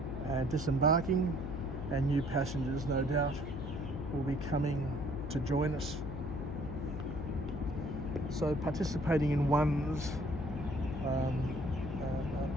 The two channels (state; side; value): noise; left; hum, 7 dB below the sound